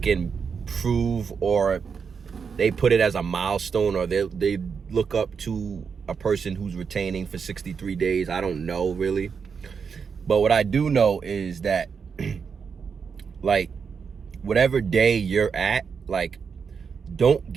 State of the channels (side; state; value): left; quieter; 6.1 dB